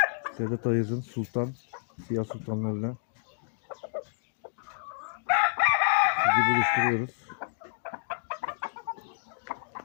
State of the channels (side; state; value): right; silent; digital silence